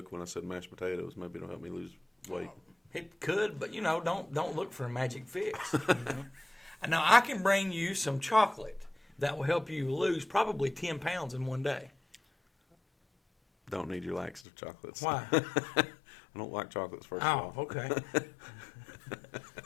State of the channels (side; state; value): right; drops out; at 14.5 s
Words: when I said mashed potatoes, maybe it'll help me lose weight. It could, but don't look for a magic fix. Now I can bring you some chocolate that will help you lose probably 10 pounds in one day. Don't need your laxative chocolates. Why? I don't like chocolates, first of all. Oh, okay.